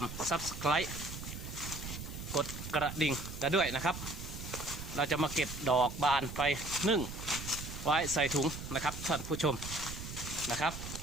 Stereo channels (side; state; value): right; noise; rumble, 8 dB below the sound